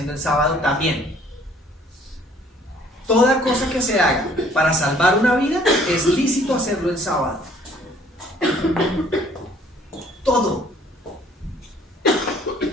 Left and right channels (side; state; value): both; normal; correlation 0.58